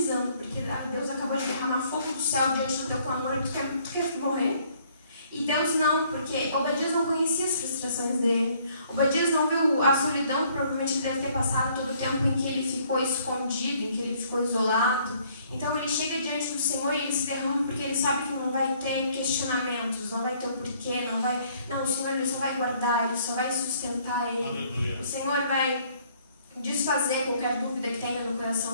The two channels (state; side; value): inverted; both; correlation -0.62